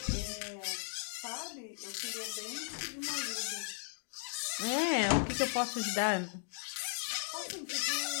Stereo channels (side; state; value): right; silent; digital silence